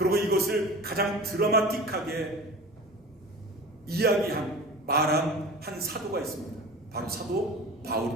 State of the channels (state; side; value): normal; both; correlation 0.36